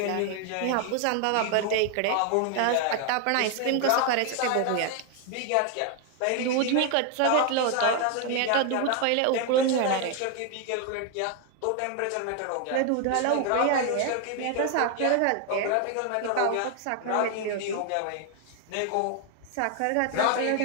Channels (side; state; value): both; different; correlation 0.00